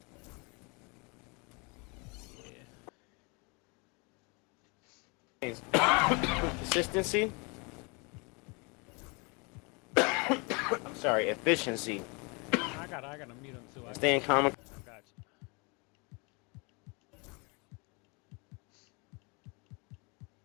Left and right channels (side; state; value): right; quieter; 30.7 dB